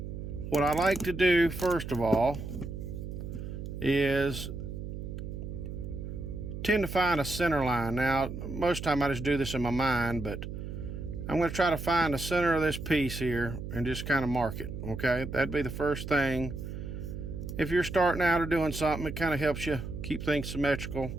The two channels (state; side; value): noise; right; hum, 7 dB below the sound